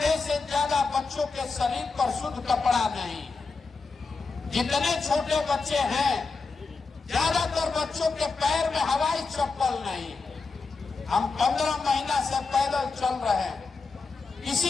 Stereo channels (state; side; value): quieter; right; 4.3 dB